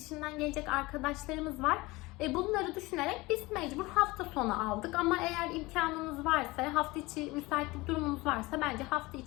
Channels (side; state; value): right; quieter; 21.8 dB